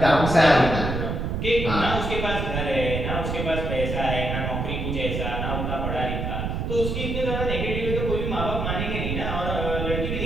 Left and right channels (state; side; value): noise; right; rumble, 2 dB below the sound